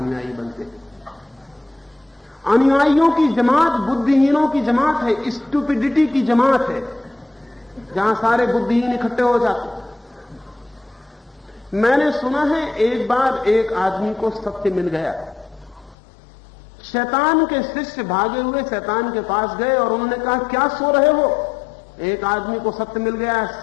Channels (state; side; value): drops out; right; at 16.0 s